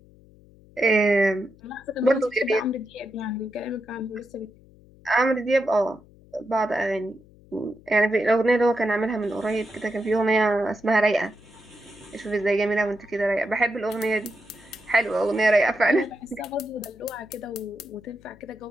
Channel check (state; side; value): noise; left; hum, 25 dB below the sound